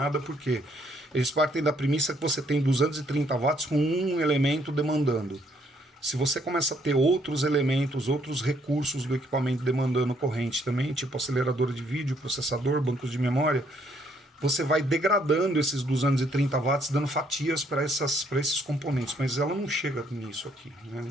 porque eles partem da premissa que você tem 230 watts com um elemento demandando. Se você começa a ter outros elementos, outros recursos do equipamento demandando corrente também, tipo acelerador de vídeo, processador, bancos de memória, você vai degradando esses 230 watts, dando fatias para esses componentes. Mas ela não chega nisso aqui, né?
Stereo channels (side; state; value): both; normal; correlation 0.68